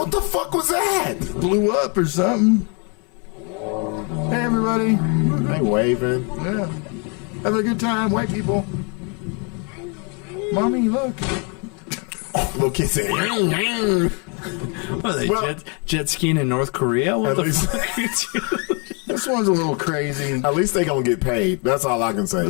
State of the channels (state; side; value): quieter; right; 35.5 dB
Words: the fuck was that? Blew up or something. Hey, everybody. They waving. Yeah. Have a good time, white people. Mommy, look. Little kid said, What are they, jet skiing in North Korea? What the fuck are you doing? This one's a little crazy. At least they gonna get paid. That's all I can say.